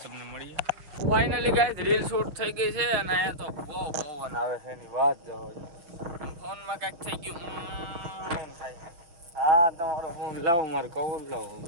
તમને મળીએ. ફાઇનલી ગાઈસ રીલ શૂટ થઈ ગઈ છે અને અહીંયા તો બહુ પવન આવે છે એની વાત જવા. ફોનમાં કાંઈક થઈ ગયું થાય. હા તમારો ફોન લાવો, મારે કવર લાવો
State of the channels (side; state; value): left; late; 6.0 ms